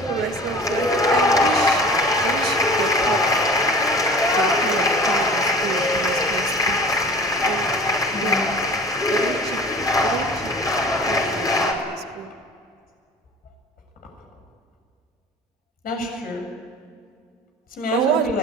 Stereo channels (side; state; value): both; normal; correlation 0.43